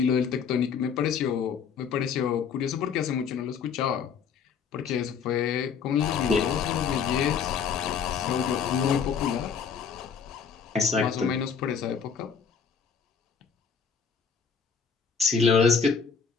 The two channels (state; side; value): quieter; right; 6.5 dB